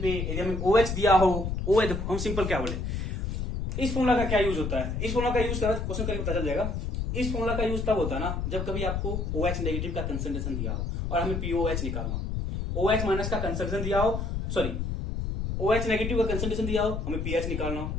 पे यदि हमें OH दिया हो, OH हम सिंपल क्या बोले, इस फॉर्मूला का क्या यूज होता है, इस फॉर्मूला का यूज करा क्वेश्चन करके पता चल जाएगा। इस फॉर्मूला का यूज तब होता है ना जब कभी आपको OH नेगेटिव का कंसंट्रेशन दिया हो और हमें POH निकालना, OH माइनस का कंसंट्रेशन दिया हो, सॉरी OH नेगेटिव का कंसंट्रेशन दिया हो, हमें pH निकालना हो।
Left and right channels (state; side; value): noise; left; rumble, 2 dB below the sound